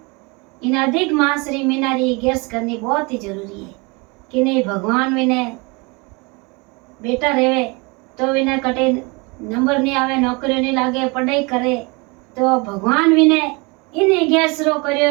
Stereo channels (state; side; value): quieter; left; 28.1 dB